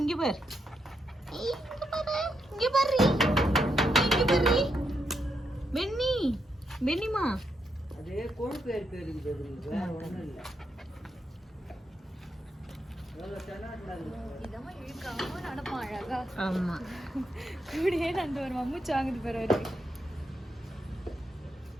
இங்க பாரு பெண்ணி. பெண்ணிமா அதே கொழுப்பு இருக்குது. ஒண்ணும் இல்லை. ஆமா கூடயே நண்டு ஒரு மம்முச்சு வாங்குது பேர் அவரு.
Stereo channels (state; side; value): normal; both; correlation 0.81